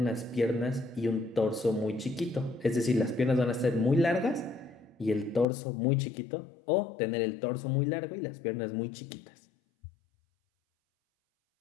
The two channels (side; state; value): right; drops out; at 5.5 s